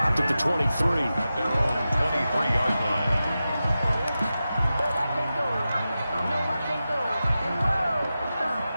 at the 23. At their own 23-yard line.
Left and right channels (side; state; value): both; inverted; correlation -0.93